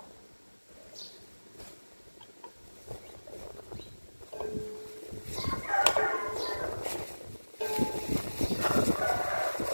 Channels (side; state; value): both; inverted; correlation -1.00